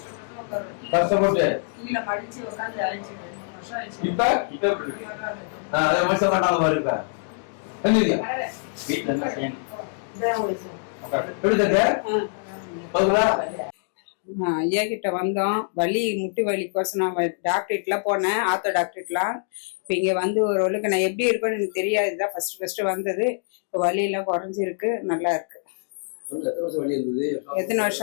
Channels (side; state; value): right; silent; digital silence